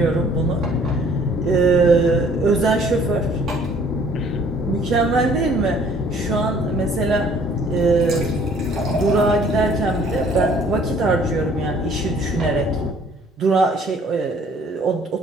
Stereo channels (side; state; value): both; normal; correlation 0.57